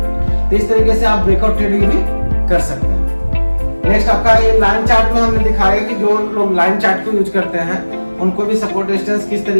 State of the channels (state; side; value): inverted; both; correlation -1.00